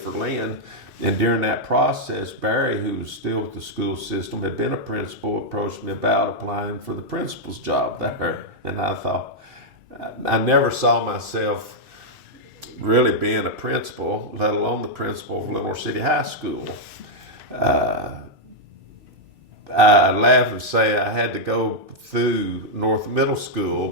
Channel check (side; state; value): both; normal; correlation -0.03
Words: Lynn. And during that process, Barry, who was still with the school system, had been a principal, approached me about applying for the principal's job there. And I thought, I never saw myself really being a principal, let alone the principal of Lenore City High School. I laugh and say I had to go through North Middle School